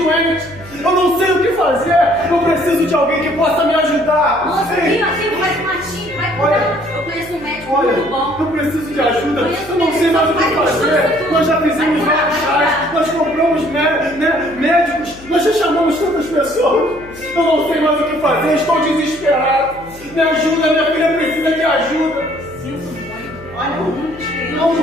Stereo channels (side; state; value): left; noise; hum, 21 dB below the sound